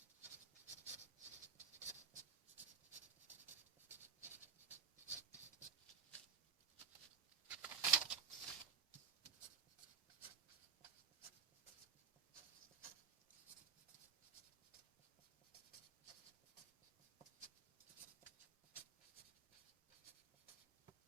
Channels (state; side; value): quieter; left; 7.0 dB